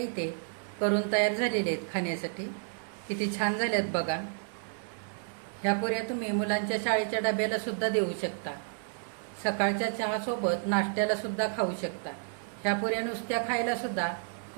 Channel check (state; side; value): silent; left; digital silence